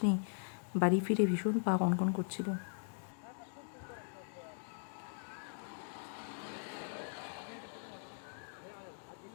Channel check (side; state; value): right; silent; digital silence